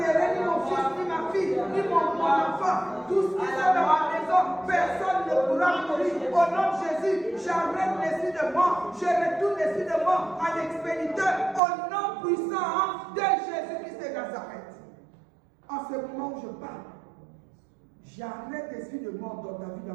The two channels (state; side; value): drops out; left; at 11.6 s